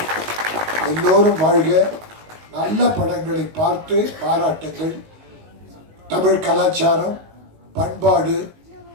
எல்லோரும் வாழ்க. நல்ல படங்களை பார்த்து பாராட்டுங்கள். தமிழ் கலாச்சாரம் பண்பாடு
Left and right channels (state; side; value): late; left; 19 ms